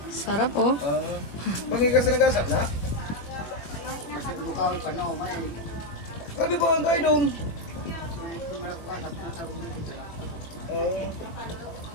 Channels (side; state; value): right; late; 20 ms